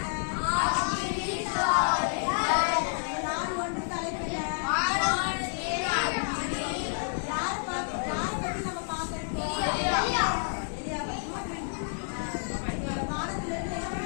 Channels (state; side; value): silent; right; 58 dB below the other